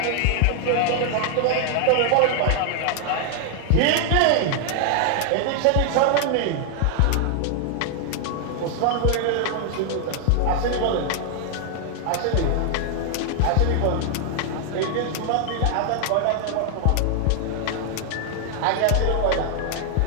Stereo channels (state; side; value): different; both; correlation 0.00